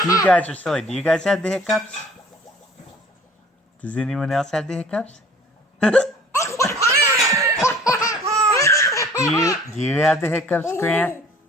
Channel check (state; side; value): normal; both; correlation 0.51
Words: You guys are silly. Do you guys have the hiccups? Does anyone else have the hiccups? Do you have the hiccups, Grant?